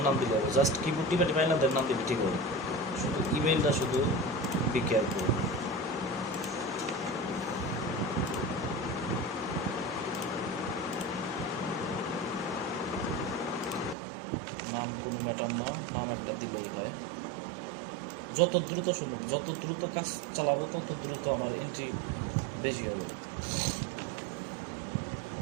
নাম দিলে হবে, জাস্ট কিবোর্ড টিপে টিপে আইল্যান্ডের নাম দিলে ঠিক হবে। শুধু ইমেলটা শুধু বি কেয়ারফুল। নাম কোনো ম্যাটার না, নাম একটা দিলেই হয়। যত দ্রুত সম্ভব, যত দ্রুত কাজ চালাবো তত দ্রুত আমার এন্ট্রি বেশি হবে।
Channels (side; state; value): left; drops out; at 14.0 s